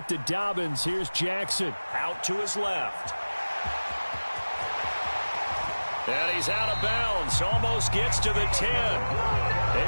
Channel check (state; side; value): inverted; both; correlation -1.00